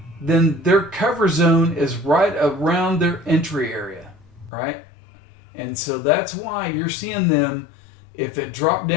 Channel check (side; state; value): right; drops out; at 4.5 s